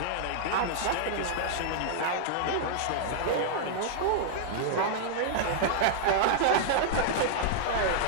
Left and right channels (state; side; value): different; both; correlation -0.01